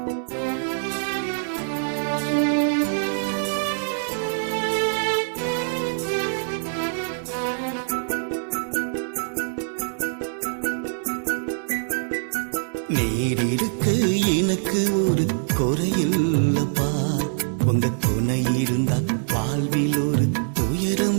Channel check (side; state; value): left; silent; 60 dB below the other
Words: நீர் இருக்கு எனக்கு ஒரு குறையில்லப்பா, உங்க துணை இருந்தா வாழ்வில் ஒரு